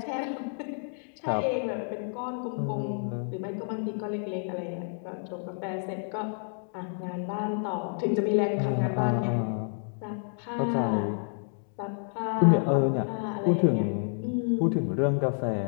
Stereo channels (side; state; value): right; silent; 57 dB below the other